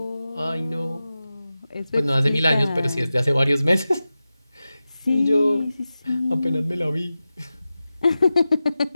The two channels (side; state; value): both; inverted; correlation -0.94